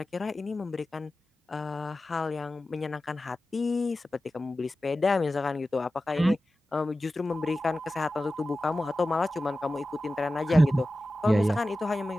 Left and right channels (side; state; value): both; normal; correlation 0.94